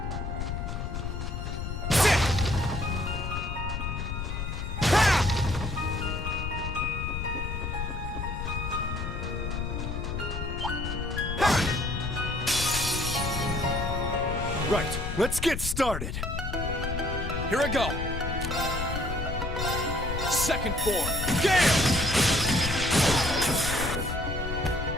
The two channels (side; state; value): left; noise; rumble, 4 dB below the sound